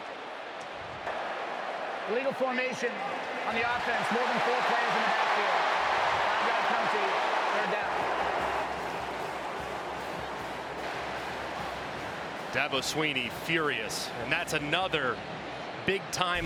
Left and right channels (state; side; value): identical; both; correlation 1.00